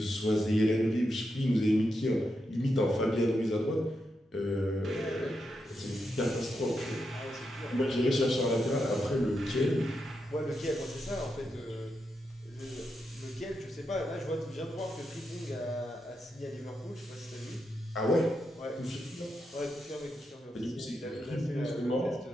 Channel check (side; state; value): both; normal; correlation 0.85